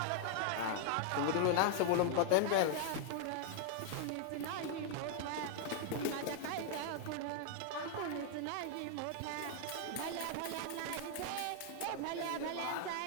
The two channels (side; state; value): both; different; correlation 0.00